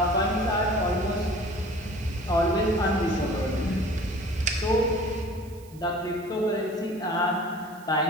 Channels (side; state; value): right; noise; hiss, 25 dB below the sound